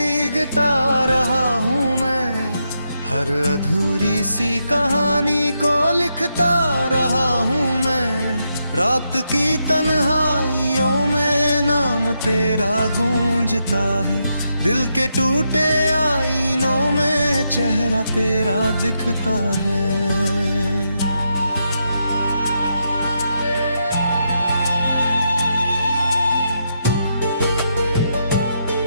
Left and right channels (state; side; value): inverted; both; correlation -0.82